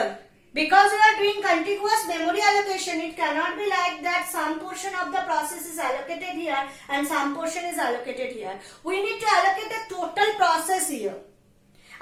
Because we are doing contiguous memory allocation, it cannot be like that some portion of the process is allocated here and some portion is allocated here. We need to allocate the total process here.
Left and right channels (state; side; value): identical; both; correlation 1.00